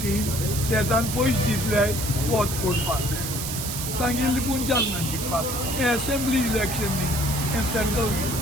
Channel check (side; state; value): right; noise; hiss, 5 dB below the sound